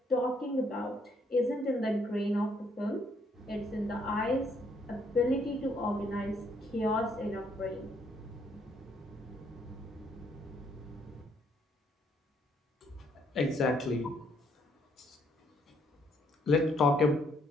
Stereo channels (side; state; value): both; normal; correlation 0.69